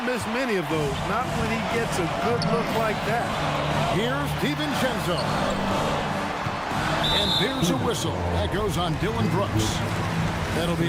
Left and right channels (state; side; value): identical; both; correlation 1.00